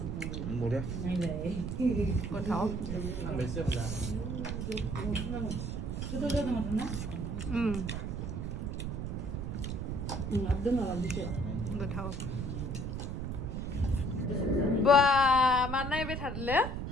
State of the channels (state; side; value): noise; right; rumble, 3 dB below the sound